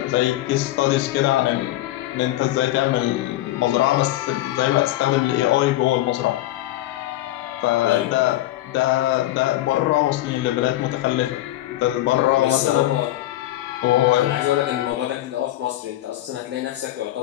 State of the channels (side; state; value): right; quieter; 15.2 dB